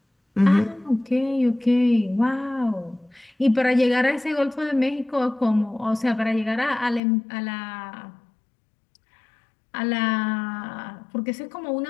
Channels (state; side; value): drops out; right; at 7.0 s